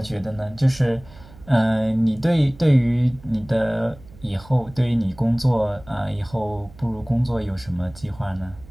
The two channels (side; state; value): right; noise; hum, 21 dB below the sound